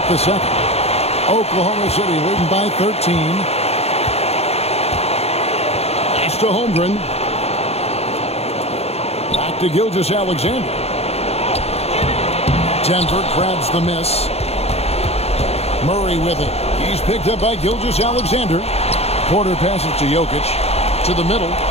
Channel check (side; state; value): right; late; 0.30 ms